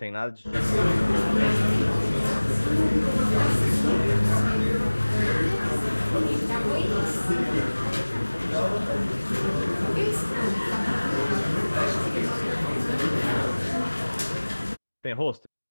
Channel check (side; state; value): both; inverted; correlation -1.00